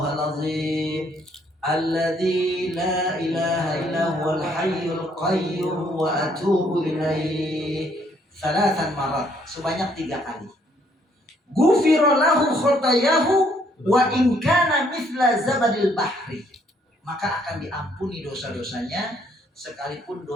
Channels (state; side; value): normal; both; correlation 0.67